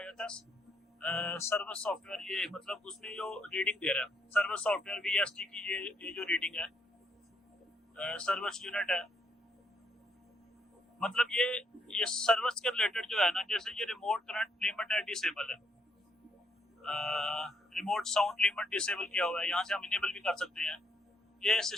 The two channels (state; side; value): normal; both; correlation 0.73